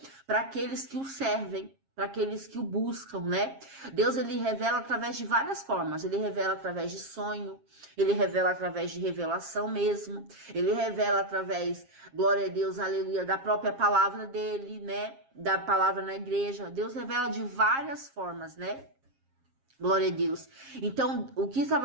para aqueles que o servem, para aqueles que o buscam, né? Deus, ele revela através de várias formas. Ele revela através de sonho, ele revela através de revelação mesmo, ele revela através, glória a Deus, aleluia, da própria palavra dele, né? Da palavra na igreja. Deus revela de várias formas, né? Glória a Deus. Então, o que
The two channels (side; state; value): left; late; 7.4 ms